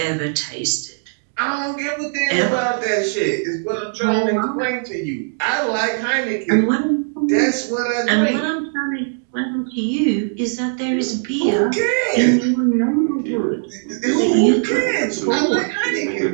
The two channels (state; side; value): silent; left; digital silence